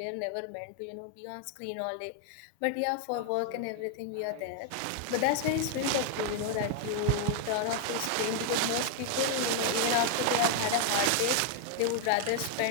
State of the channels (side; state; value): both; different; correlation 0.00